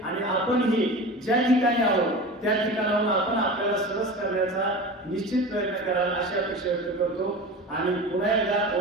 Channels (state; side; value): normal; both; correlation 0.32